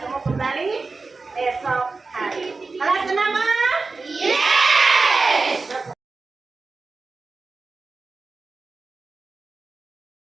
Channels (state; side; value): quieter; left; 3.9 dB